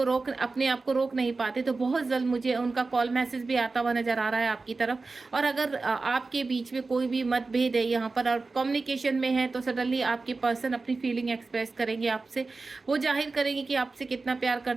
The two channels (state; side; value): quieter; left; 3.8 dB